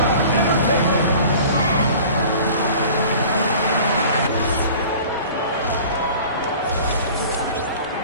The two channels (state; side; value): inverted; both; correlation -0.44